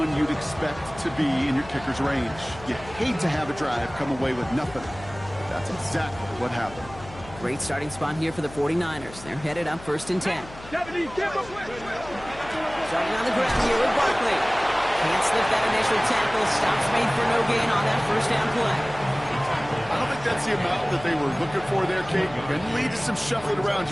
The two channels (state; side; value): noise; left; hum, 17 dB below the sound